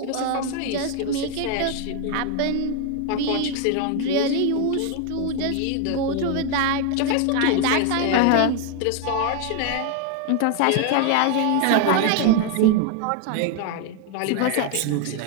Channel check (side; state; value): both; different; correlation 0.01